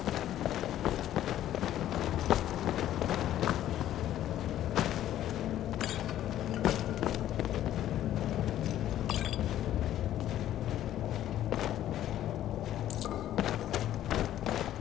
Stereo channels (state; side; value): quieter; right; 12.3 dB